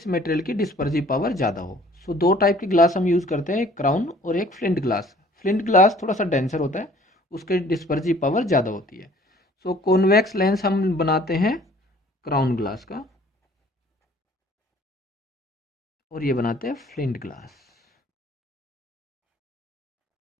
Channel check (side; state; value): both; normal; correlation 0.54